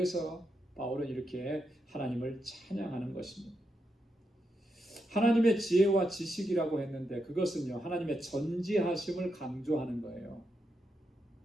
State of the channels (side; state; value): both; normal; correlation 0.84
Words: 바울은 이렇게 하나님을 찬양하는 것입니다. 하나님의 지혜와 지식이라고 했는데 그것은요, 하나님의 전지하심을 강조하는 거예요.